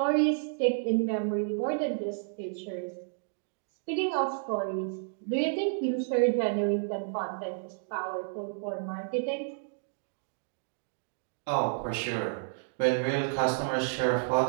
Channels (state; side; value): silent; left; digital silence